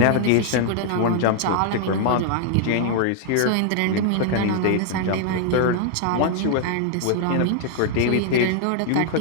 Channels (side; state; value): both; different; correlation 0.00